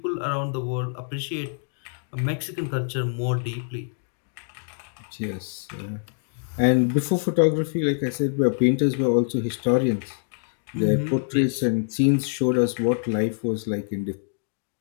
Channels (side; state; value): right; silent; digital silence